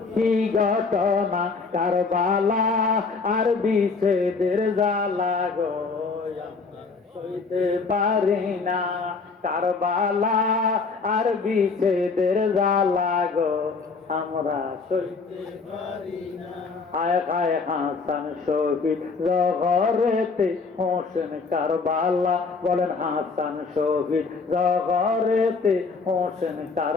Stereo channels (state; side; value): quieter; right; 4.6 dB